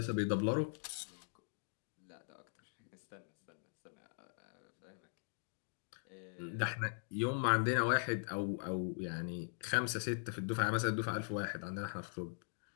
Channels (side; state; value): right; silent; digital silence